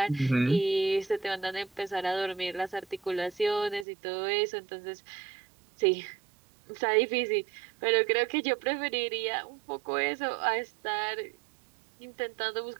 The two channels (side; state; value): left; drops out; at 3.9 s